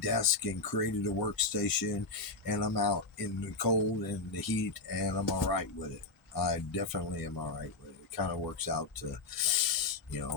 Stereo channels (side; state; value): right; quieter; 3.5 dB